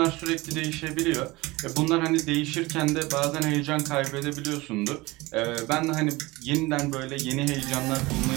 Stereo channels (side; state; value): left; quieter; 21.6 dB